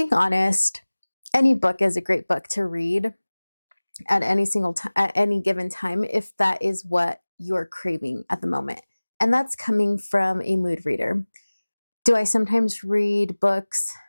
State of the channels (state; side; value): inverted; both; correlation -1.00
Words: honest, any book is a great book to read at at any given time if that is what you're craving at the moment. And that's coming from a mood reader. Do I sometimes read books